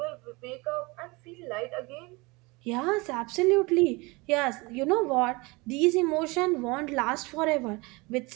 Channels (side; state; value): left; quieter; 25.3 dB